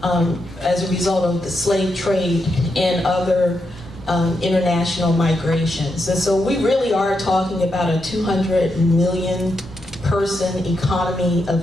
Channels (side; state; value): both; normal; correlation 0.84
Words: as a result of the slave trade and other international migrations. And so we really are talking about a 200 million person economy